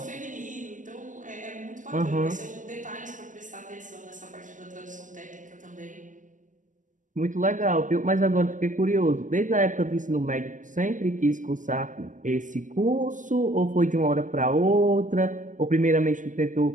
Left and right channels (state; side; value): late; left; 0.37 ms